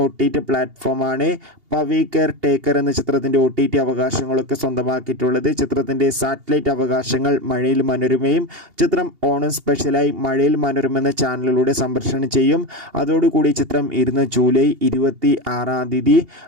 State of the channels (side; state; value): left; late; 2.8 ms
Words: OTT പ്ലാറ്റ്ഫോമാണ് പവി കെയർ ടേക്കർ എന്ന ചിത്രത്തിൻ്റെ OTT അവകാശങ്ങളൊക്കെ സ്വന്തമാക്കിയിട്ടുള്ളത്. ചിത്രത്തിൻ്റെ സാറ്റലൈറ്റ് അവകാശങ്ങൾ മഴയിൽ മനോരമയും ചിത്രം ഓണം സ്പെഷ്യലായി മഴയിൽ മനോരമ എന്ന ചാനലിലൂടെ സംപ്രേഷണം ചെയ്യും. അതോടുകൂടി ചിത്രം ജൂലൈ 26